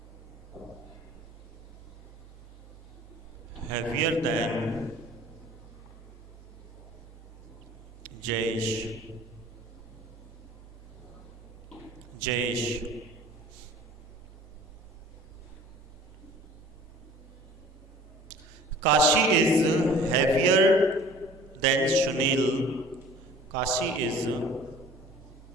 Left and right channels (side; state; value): both; normal; correlation 0.47